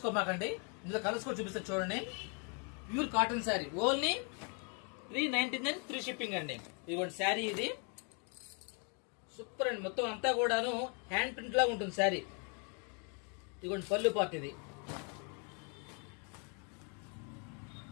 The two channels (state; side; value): quieter; right; 38.1 dB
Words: ఇందులో కలర్స్ కూడా చూపిస్తారు చూడండి. Pure cotton sari only 399 free shipping అండి. ఇదిగోండి శారీ, ఇది సూపర్ అండి. మొత్తం అంతా కూడాను హ్యాండ్ ప్రింట్ లాగా ఉంటుంది శారీ. ఇదిగోండి పళ్ళు పార్ట్, ఇది